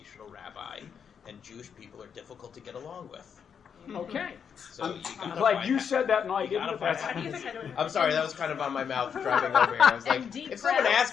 rabbi, and Jewish people are difficult to get along with. Okay. So I'm glad you said that and I didn't. I'm sorry, that was kind of on my mouth driving over here. I was like, if someone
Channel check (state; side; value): quieter; right; 7.2 dB